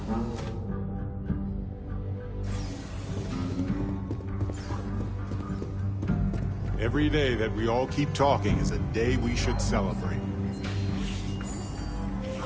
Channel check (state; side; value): identical; both; correlation 1.00